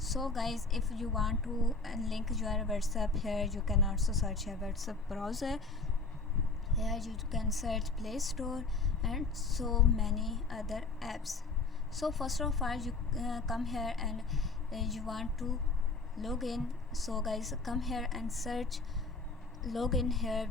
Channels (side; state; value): right; quieter; 3.8 dB